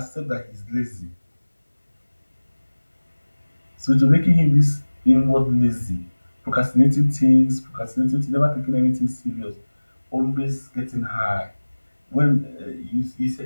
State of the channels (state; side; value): inverted; both; correlation -1.00